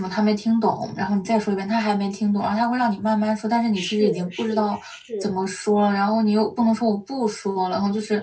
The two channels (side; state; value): both; identical; correlation 1.00